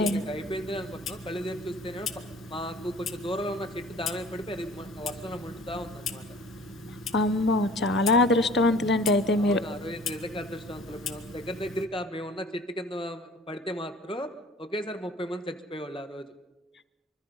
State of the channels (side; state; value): both; normal; correlation 0.48